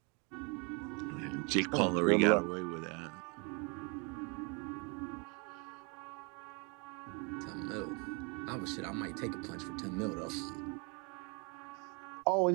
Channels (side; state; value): left; quieter; 32.8 dB